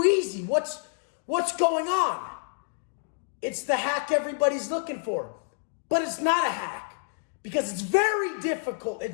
easy. What's going on? It's the hack everybody's looking for. But it's not a hack because it's very difficult.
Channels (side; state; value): right; silent; digital silence